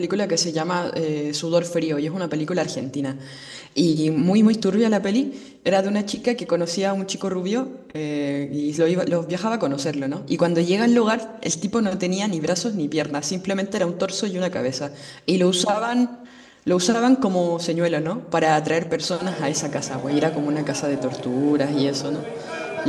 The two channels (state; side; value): identical; both; correlation 1.00